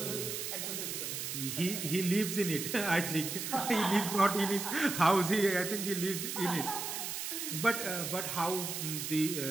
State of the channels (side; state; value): right; noise; hiss, 4 dB below the sound